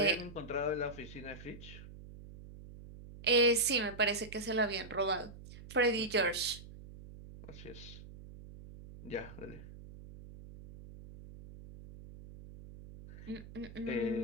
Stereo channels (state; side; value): noise; right; hum, 15 dB below the sound